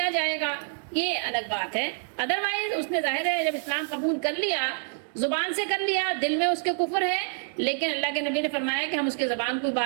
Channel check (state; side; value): silent; left; digital silence